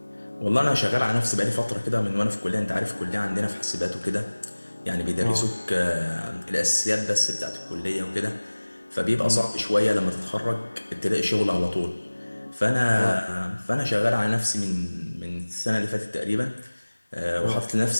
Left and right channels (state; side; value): inverted; both; correlation -1.00